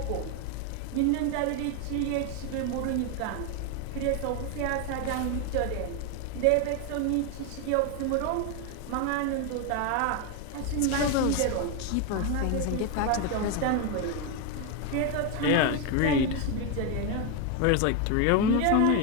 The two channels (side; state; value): both; different; correlation 0.01